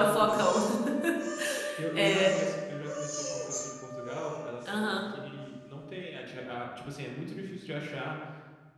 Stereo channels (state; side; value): identical; both; correlation 1.00